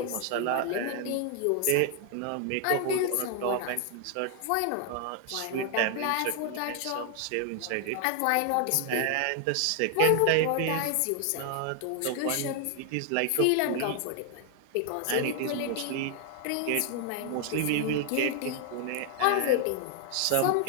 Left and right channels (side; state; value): both; different; correlation 0.00